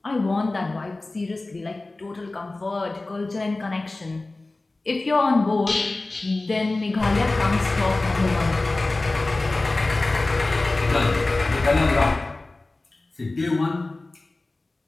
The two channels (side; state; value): right; quieter; 3.1 dB